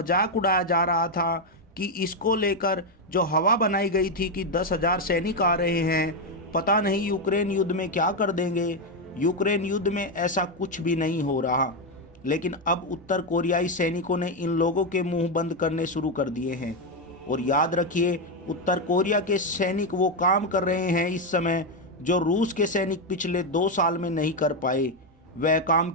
उड़ाया जा रहा था कि इसको लेकर जो हवा बनाई गई थी कि 10,000 सैनिक आ रहे हैं, पता नहीं यूक्रेन युद्ध में क्या कर देंगे। यूक्रेन युद्ध में ऐसा कुछ भी नहीं हो रहा, लेकिन अब उत्तर कोरियाई सैनिकों ने इन लोगों के मुंह बंद करने शुरू कर दिए हैं। और याद रखिए, उत्तर कोरिया के सैनिक वो काम कर रहे हैं इस समय जो रूस के सैनिक पिछले 2 साल में नहीं कर पाए। वह काम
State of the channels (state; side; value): normal; both; correlation 0.05